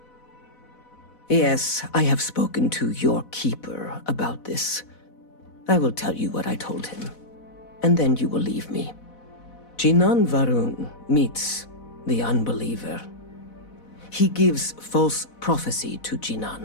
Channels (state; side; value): late; right; 4.1 ms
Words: Yes, I have spoken to your keeper about this. I will tell you what I told him, and then you will leave me. Jinan Varun meets the unbeliever. He gives false prophecy to